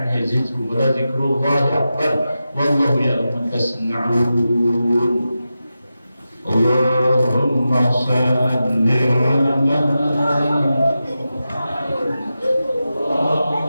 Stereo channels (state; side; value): inverted; both; correlation -0.92